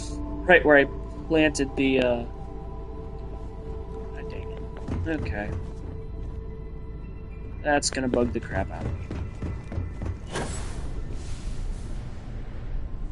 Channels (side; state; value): both; identical; correlation 1.00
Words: right where I planted the, God dang it. Okay. That's gonna bug the crap out of me.